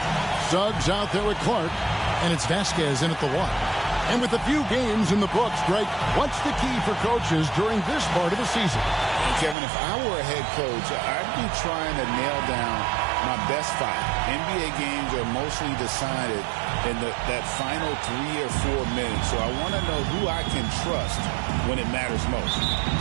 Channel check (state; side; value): drops out; left; at 9.6 s